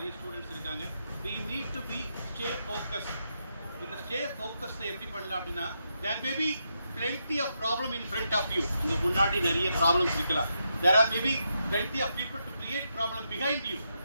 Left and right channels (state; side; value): inverted; both; correlation -0.83